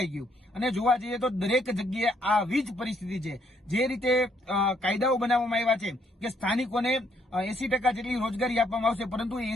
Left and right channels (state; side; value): normal; both; correlation 0.70